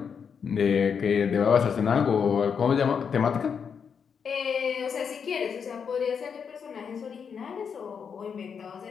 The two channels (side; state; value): right; quieter; 6.7 dB